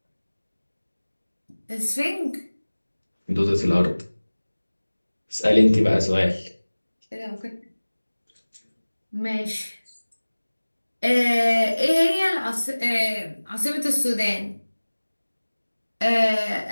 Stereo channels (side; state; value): both; inverted; correlation -1.00